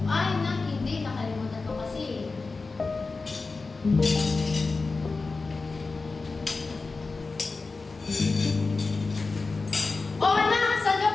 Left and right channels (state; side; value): quieter; right; 3.9 dB